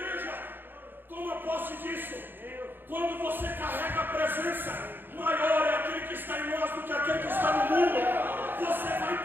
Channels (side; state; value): left; late; 0.097 ms